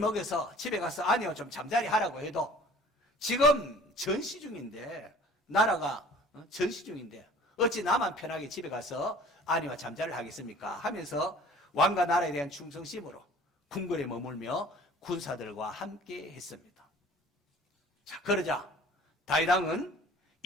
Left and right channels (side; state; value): both; normal; correlation 0.49